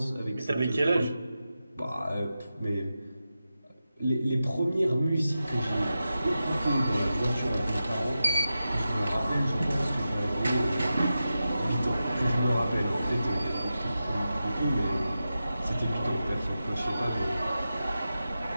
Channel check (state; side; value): inverted; both; correlation -0.92